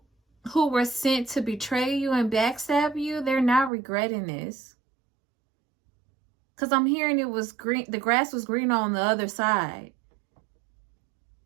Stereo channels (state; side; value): drops out; left; at 3.7 s